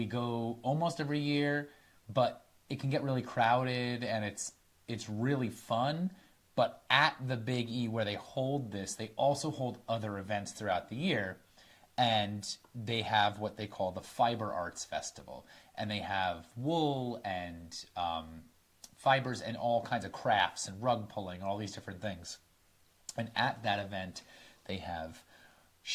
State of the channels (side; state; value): both; identical; correlation 1.00